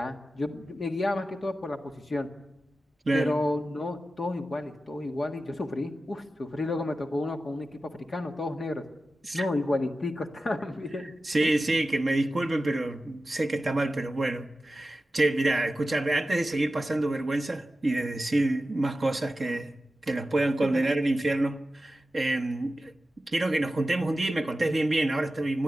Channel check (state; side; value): normal; both; correlation 0.93